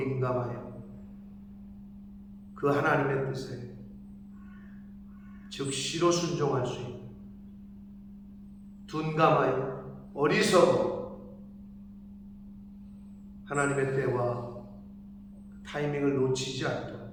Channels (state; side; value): identical; both; correlation 1.00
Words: 그 하나님의 뜻에 즉시로 순종할 수 있는 둔감하여 어리석어 하나님의 때와 타이밍을 놓치지 않도록